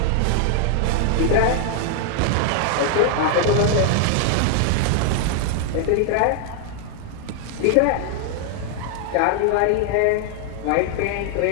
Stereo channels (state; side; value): different; both; correlation 0.00